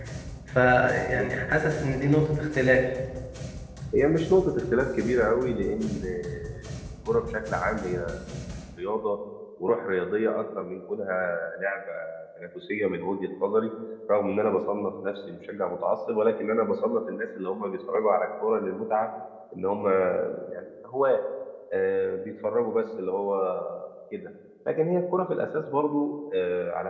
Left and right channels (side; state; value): both; identical; correlation 1.00